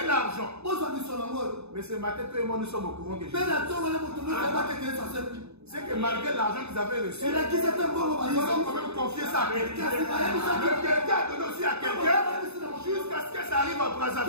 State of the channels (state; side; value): late; left; 0.80 ms